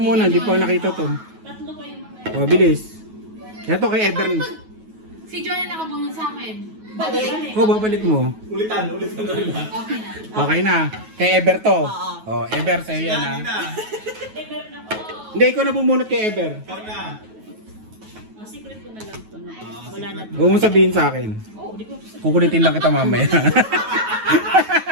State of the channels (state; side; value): late; left; 9.3 ms